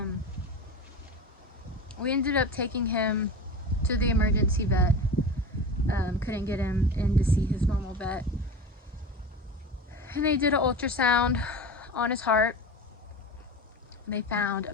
we ended up taking him to the emergency vet. Couldn't get him in to see his normal vet, and they did an ultrasound on his heart. They found a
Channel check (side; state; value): both; normal; correlation 0.29